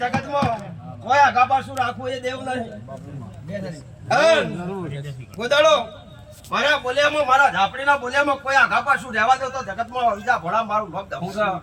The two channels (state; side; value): identical; both; correlation 1.00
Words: કોઈ આગા પાછું રાખવું એ દેવ નહીં કોદાળો મારા બોલ્યામાં મારા ઝાપડીના બોલ્યામાં કોઈ આગા પાછું રહેવા દો તો જગતમાં બીજા ભોળા મારું ભક્ત હું છું